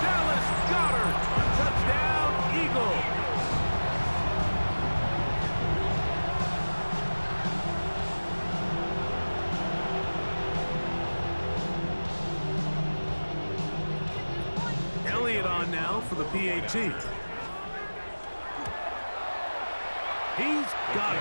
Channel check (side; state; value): both; inverted; correlation -1.00